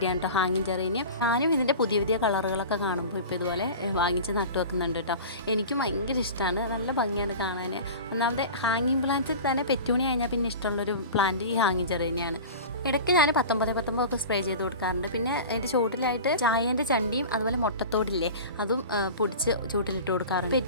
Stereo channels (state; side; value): inverted; both; correlation -0.34